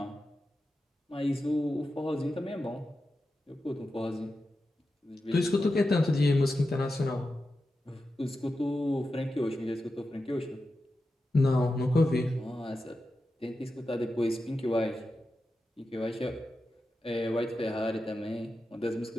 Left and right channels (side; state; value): both; normal; correlation 0.91